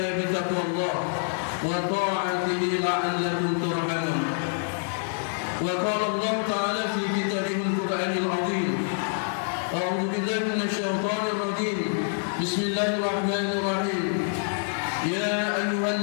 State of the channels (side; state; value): right; silent; digital silence